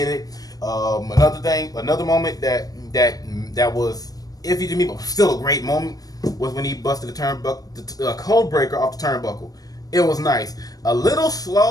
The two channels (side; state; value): right; late; 0.18 ms